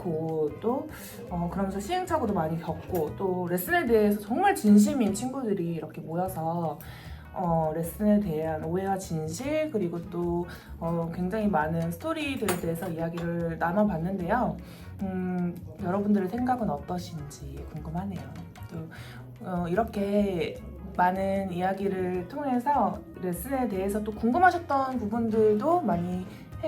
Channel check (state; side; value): identical; both; correlation 1.00